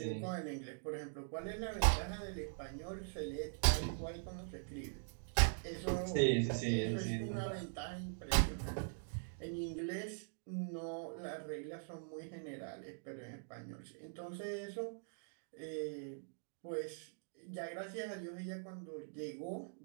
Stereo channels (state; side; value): silent; left; digital silence